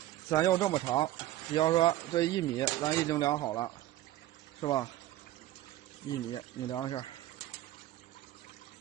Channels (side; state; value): left; quieter; 14.6 dB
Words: 咱要这么长，比方说这1米咱已经量好了，是吧？1米你量一下